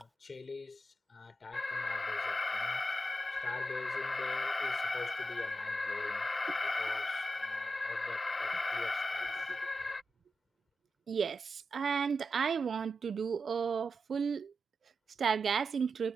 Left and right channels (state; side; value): normal; both; correlation 0.89